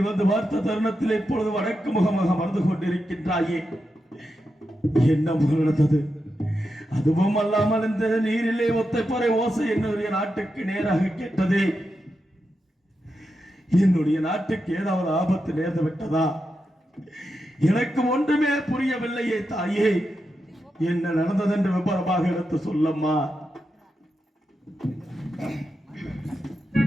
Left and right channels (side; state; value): both; normal; correlation 0.88